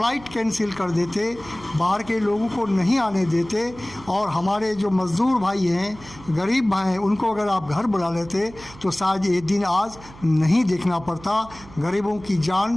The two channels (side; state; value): right; noise; hum, 19 dB below the sound